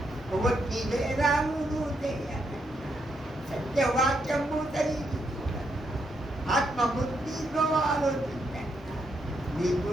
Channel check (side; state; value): both; normal; correlation 0.79